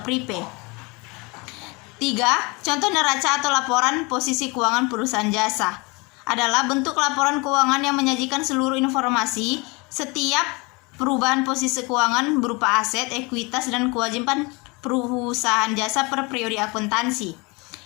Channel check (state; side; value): quieter; right; 27.5 dB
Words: prepay. 3. Contoh neraca atau laporan posisi keuangan perusahaan jasa adalah bentuk laporan keuangan yang menyajikan seluruh informasi setiap perubahan posisi keuangan berupa aset, ekuitas, dan kewajiban perusahaan jasa per periode akuntansi.